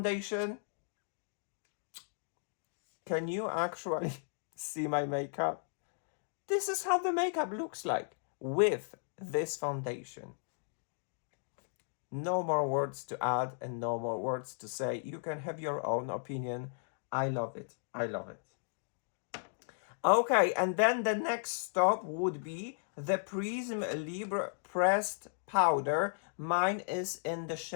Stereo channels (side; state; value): right; silent; digital silence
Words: can you actually see my makeup? This is how the makeup looks like with this foundation. No more words to add and no more words to say. You can have your own opinion. I love it. I love it. Okay, and then the next stop would be the Prisme Libre Pressed Powder. Mine is in the